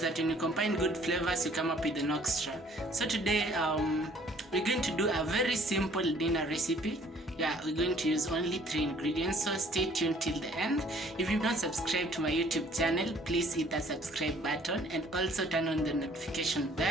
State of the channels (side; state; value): both; normal; correlation 0.57